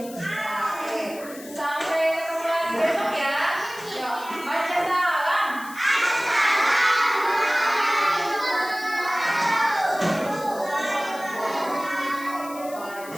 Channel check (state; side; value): noise; left; hiss, 17 dB below the sound